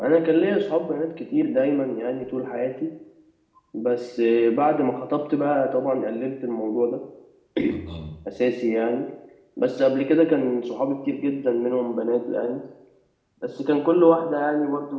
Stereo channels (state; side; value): identical; both; correlation 1.00